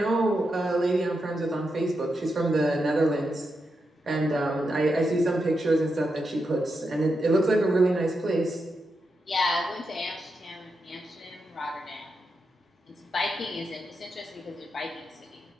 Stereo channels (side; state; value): both; normal; correlation 0.86